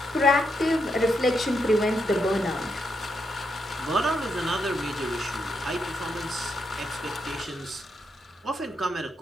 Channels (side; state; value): both; normal; correlation 0.81